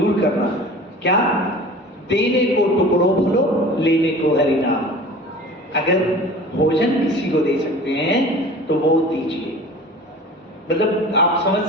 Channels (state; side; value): normal; both; correlation 0.41